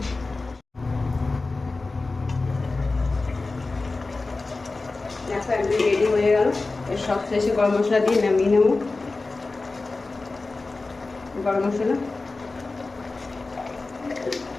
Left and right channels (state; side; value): quieter; right; 3.5 dB